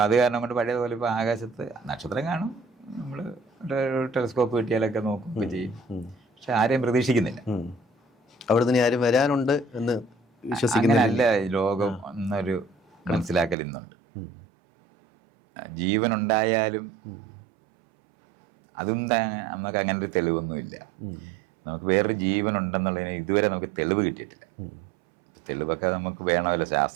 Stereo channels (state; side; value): drops out; left; at 13.6 s